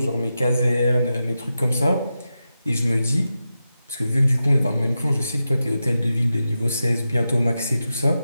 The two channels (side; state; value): both; inverted; correlation -0.90